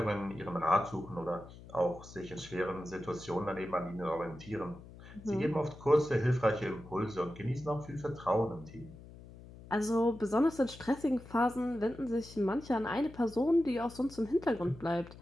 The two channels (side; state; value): left; noise; hum, 17 dB below the sound